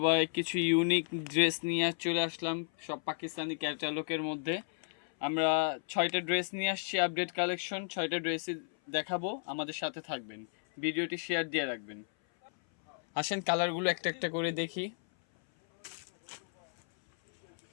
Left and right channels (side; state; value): right; silent; 56 dB below the other